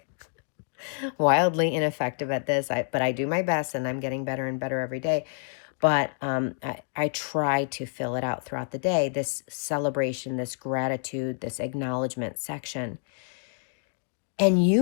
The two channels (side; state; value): right; silent; digital silence